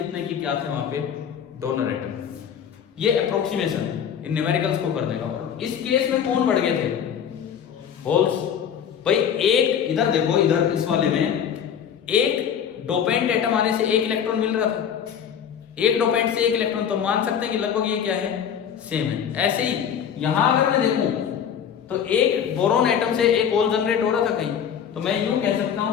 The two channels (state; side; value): quieter; right; 8.3 dB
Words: की क्या थे वहां पे डोनर एटम। ये अप्रोक्सीमेशन इन न्यूमेरिकल्स को करने का। और इस केस में कौन बढ़ गए थे? होल्स। भाई एक इधर देखो, इधर इस वाले में एक डोपेंट एटम आने से एक इलेक्ट्रॉन मिल रहा था, एक डोपेंट से एक इलेक्ट्रॉन, तो मान सकते हैं कि लगभग ये क्या है, सेम है। ऐसे ही यहां अगर मैं देखूं तो एक बोरोन एटम से एक होल जनरेट हो रहा था कहीं, तो मैं यूं कह सकता